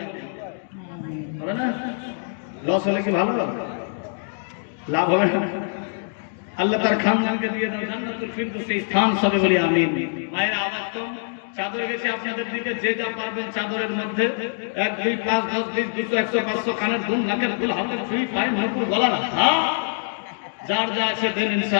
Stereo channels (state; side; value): silent; right; digital silence